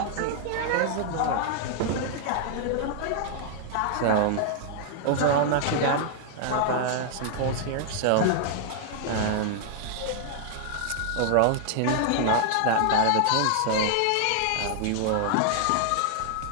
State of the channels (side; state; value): both; different; correlation -0.01